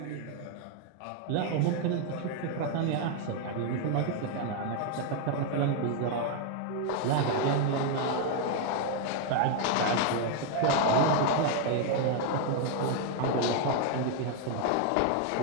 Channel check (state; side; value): different; both; correlation 0.01